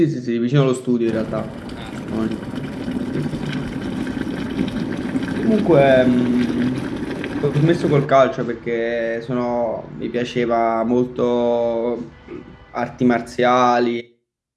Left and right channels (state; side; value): identical; both; correlation 1.00